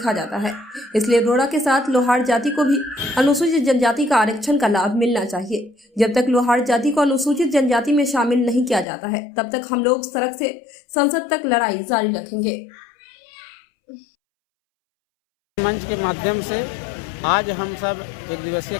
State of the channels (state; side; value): drops out; right; at 8.8 s